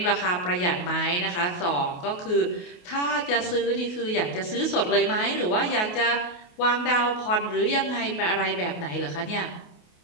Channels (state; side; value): late; right; 28 ms